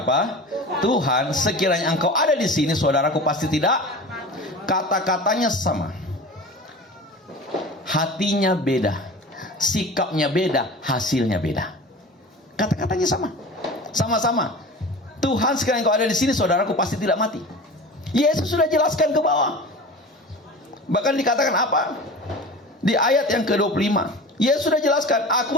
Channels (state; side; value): normal; both; correlation 0.35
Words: apa? Tuhan, sekiranya engkau ada di sini, saudaraku pasti tidak. Kata-katanya sama. Hatinya beda, sikapnya beda, hasilnya beda. Kata-katanya sama. Sama-sama. Tuhan, sekiranya engkau ada di sini, saudaraku pasti tidak mati. Yesus sudah jelaskan ke bawah. Bahkan dikatakan apa? Di ayat yang ke-25, Yesus sudah jelaskan,